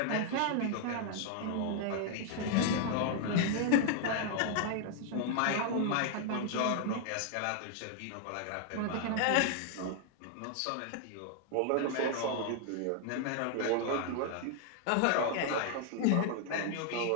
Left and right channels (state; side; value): different; both; correlation 0.00